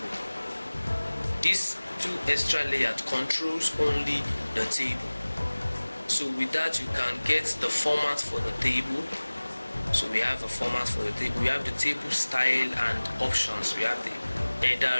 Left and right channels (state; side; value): inverted; both; correlation -1.00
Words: This two extra layout controls only the table. So with that you can get the format for the table. So we have a format for the table. We have the table style and options. We have the